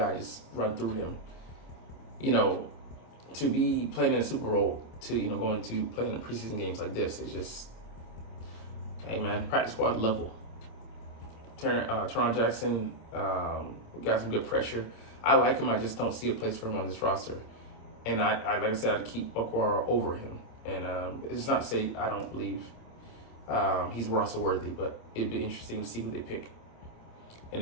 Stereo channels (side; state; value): right; late; 26 ms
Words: just run through him. To be playing in a Super Bowl, to going to playing in preseason games like this, it's just, hey man, practice squad level. Teron Jackson got some good pressure. I like him. I just don't see a place for him on this roster. And I like I said, I'd keep Okwara over him. And it's not to say I don't believe he's roster worthy, but it'd be interesting to see who they pick.